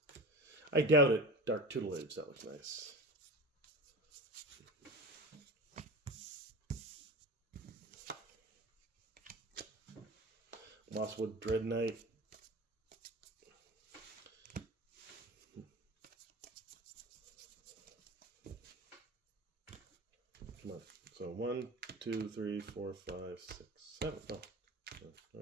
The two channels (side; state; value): both; normal; correlation 0.31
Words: I doubt it. Dark Tutelage, that looks nice. Mosswood Dread Knight. Come on. So 1, 2, 3, 4, 5, 6, 7. Oh.